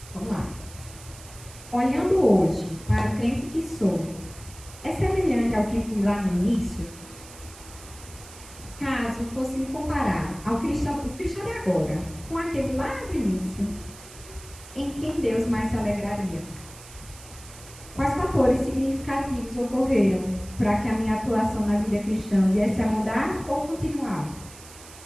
Vamos lá. Olhando hoje para o crente que sou, é semelhante ao que fui lá no início? Caso fosse me comparar ao cristão de agora, com aquele lá no início, em quem Deus mais se alegraria? Quais fatores significativos ocorreram para que a minha atuação na vida cristã viesse a mudar ou continuar?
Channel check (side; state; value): right; noise; hiss, 18 dB below the sound